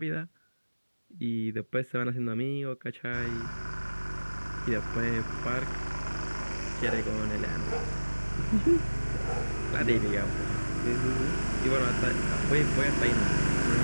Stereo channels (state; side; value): inverted; both; correlation -1.00